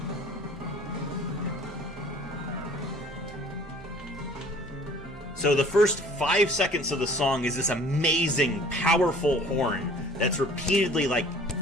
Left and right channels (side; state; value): both; normal; correlation 0.51